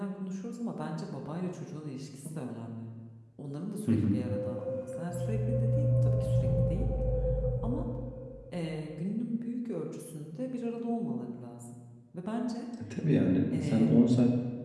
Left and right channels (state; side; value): identical; both; correlation 1.00